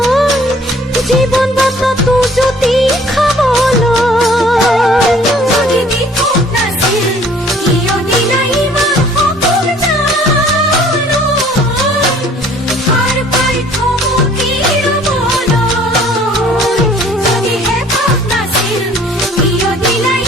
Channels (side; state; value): both; normal; correlation 0.55